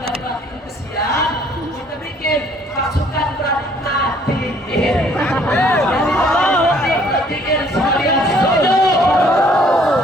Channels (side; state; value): both; normal; correlation 0.61